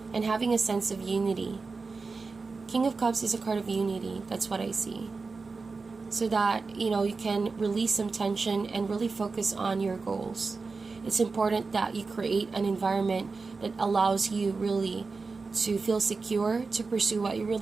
And having a sense of unity. King of Cups is a card of unity. That's what I see. So that, you know, you can release some tension and really focus on your goals. It's important that you create an environment that allows you really to feel secure, to pursue what you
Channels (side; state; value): left; quieter; 4.2 dB